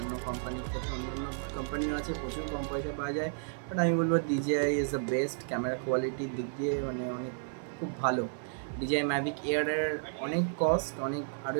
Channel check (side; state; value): left; silent; 56 dB below the other